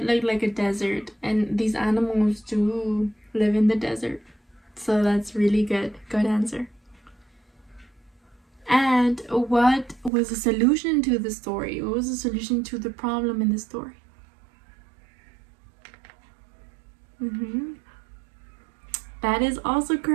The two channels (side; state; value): left; drops out; at 10.1 s